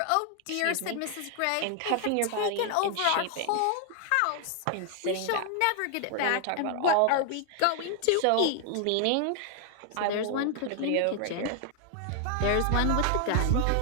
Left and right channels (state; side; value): different; both; correlation 0.00